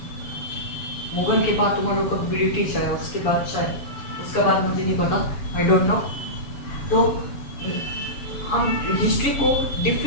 मुगल के बाद तुम्हारे लोग का ब्रिटिश आया, उसके बाद शायद, उसका बाद मुझे नहीं पता, आई डोंट नो। तो हम हिस्ट्री को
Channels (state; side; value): late; right; 7.0 ms